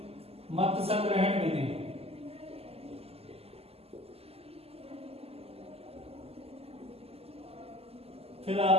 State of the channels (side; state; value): left; late; 0.29 ms